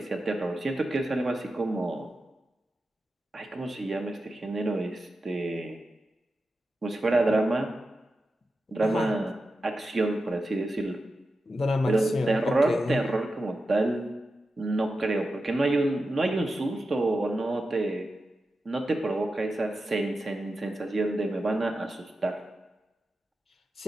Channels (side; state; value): both; normal; correlation 0.91